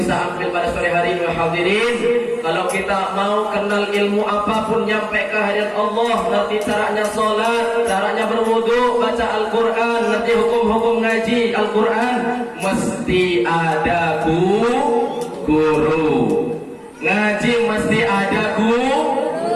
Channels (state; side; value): identical; both; correlation 1.00